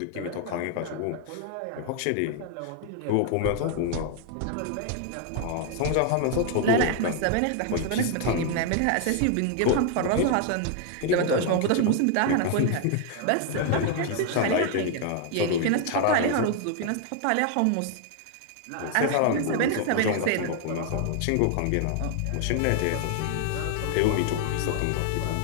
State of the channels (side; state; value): both; different; correlation 0.00